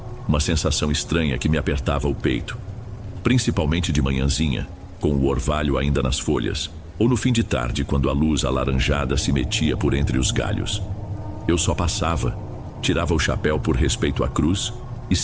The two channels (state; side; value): identical; both; correlation 1.00